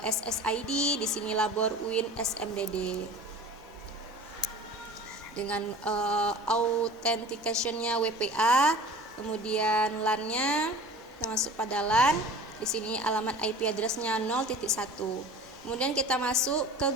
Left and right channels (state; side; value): normal; both; correlation 0.41